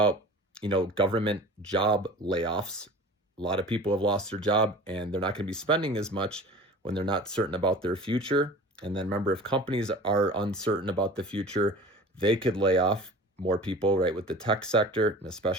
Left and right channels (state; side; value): normal; both; correlation 0.40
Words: government job layoffs. A lot of people have lost their job and they're not going to be spending as much when they're not certain about their future. And then remember, if companies are uncertain about the future, they could lay off more people, right? With the tech sector, and